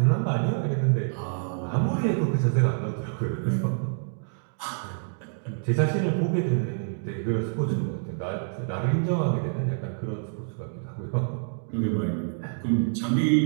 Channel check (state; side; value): silent; left; digital silence